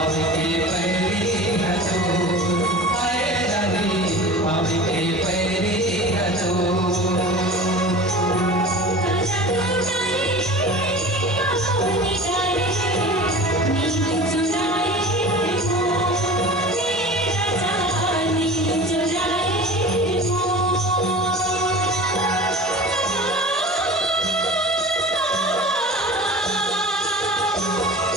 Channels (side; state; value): both; normal; correlation 0.37